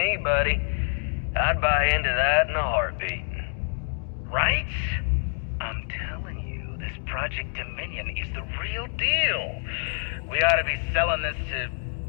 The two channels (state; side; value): silent; right; 60 dB below the other